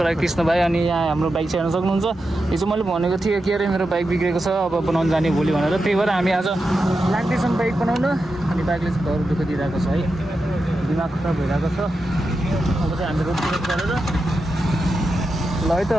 कृष्ण भाइ। अनि यहाँ हाम्रो बाइक चाहिँ हेर्न सक्नुहुन्छ। हिजो मैले भनेको थिएँ के अरे मेरो बाइक बिग्रेको छ, अब बनाउनु जाने भोलि भनेर। त्यही भएर हामी आज लाग्दैछौँ बाइक बनाउन। अनि बाइकले चाहिँ घर दुःख दिइरहेको छ है, दिमाग खराब भइरहेको छ। अब चाहिँ हामी रोड गरेर ल है त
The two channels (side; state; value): both; normal; correlation 0.89